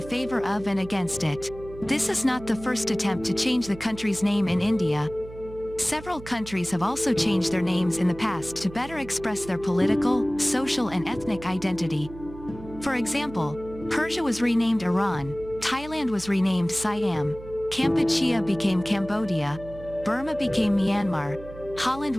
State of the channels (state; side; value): noise; right; hum, 16 dB below the sound